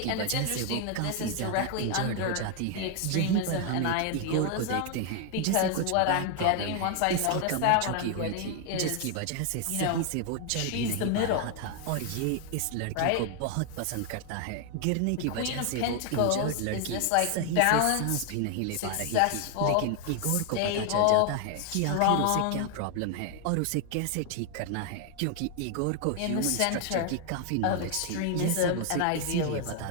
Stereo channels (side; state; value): both; different; correlation 0.00